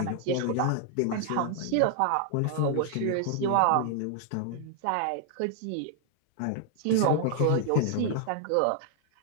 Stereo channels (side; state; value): both; different; correlation 0.00